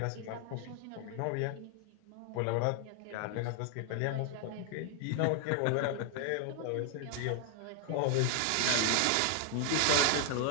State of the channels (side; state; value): both; different; correlation 0.00